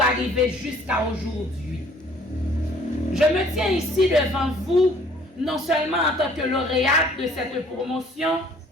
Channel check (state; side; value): normal; both; correlation 0.57